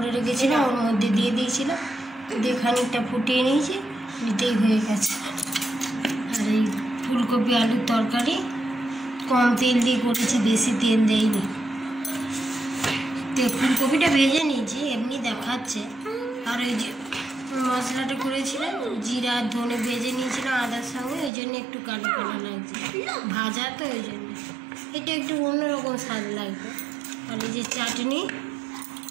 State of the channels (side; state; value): left; drops out; at 21.3 s